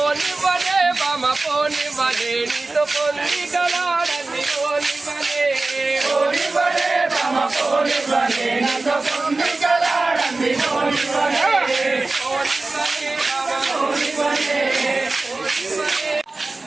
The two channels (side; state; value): left; quieter; 3.4 dB